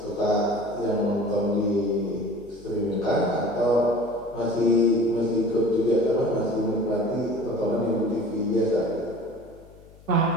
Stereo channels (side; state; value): left; noise; hum, 24 dB below the sound